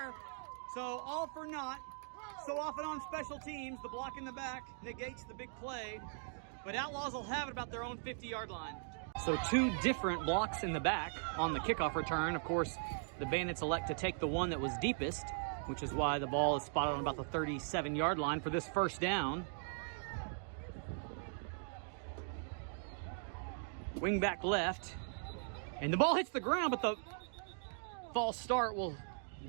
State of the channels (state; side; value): silent; left; digital silence